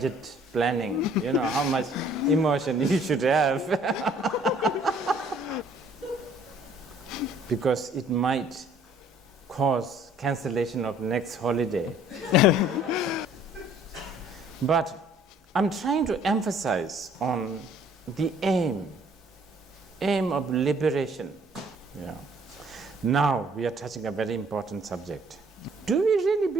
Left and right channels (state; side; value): normal; both; correlation 0.58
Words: planning. How much emotion you should have. Because it might cause cancellation of next holiday. But I'm trying to emphasize on the aim of liberation. Yeah. Now we are touching a very important subject. Do we really